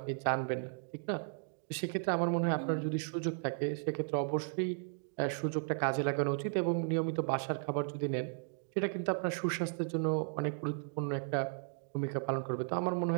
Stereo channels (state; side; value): silent; left; digital silence